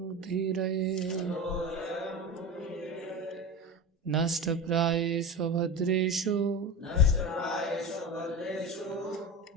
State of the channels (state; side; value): normal; both; correlation 0.25